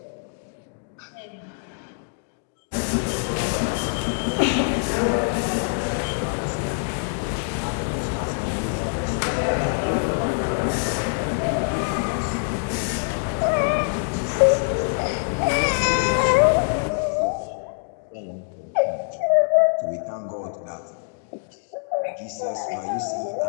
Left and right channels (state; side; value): silent; right; digital silence